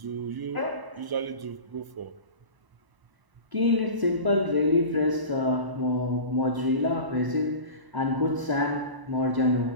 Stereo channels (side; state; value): left; late; 1.0 ms